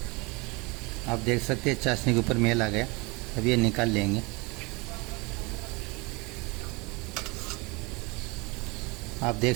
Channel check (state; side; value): quieter; left; 27.0 dB